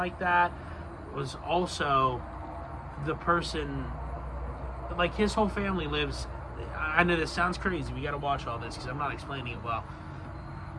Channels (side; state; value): both; identical; correlation 1.00